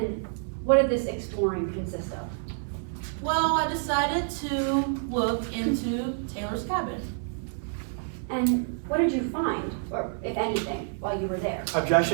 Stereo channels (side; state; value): left; silent; 56 dB below the other